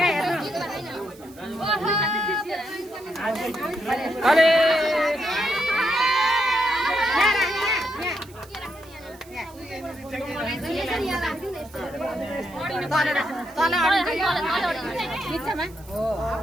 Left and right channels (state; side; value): noise; right; hiss, 24 dB below the sound